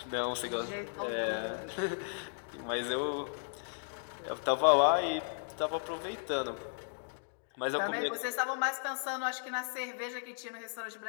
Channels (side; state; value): right; silent; digital silence